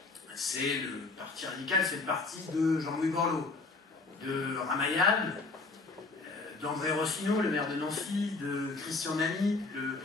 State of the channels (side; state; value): right; quieter; 3.7 dB